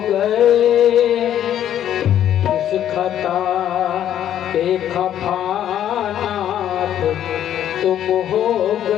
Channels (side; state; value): right; quieter; 10.8 dB